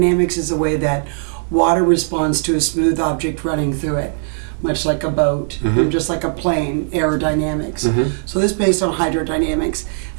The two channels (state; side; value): silent; left; 67 dB below the other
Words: is the way that water responds to a smooth object running through it, much like a boat, just like a plane, aerodynamics. So this is based on hydrodynamics.